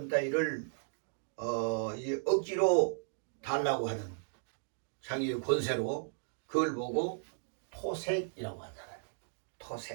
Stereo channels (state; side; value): silent; left; digital silence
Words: 따위를 억지로 달라고 하는 자기의 권세로 그걸 보고 토색이라고 하잖아요.